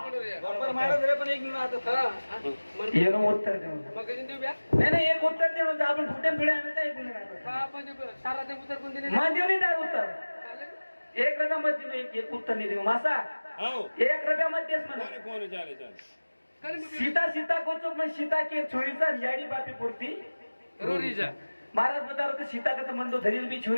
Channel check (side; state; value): both; inverted; correlation -1.00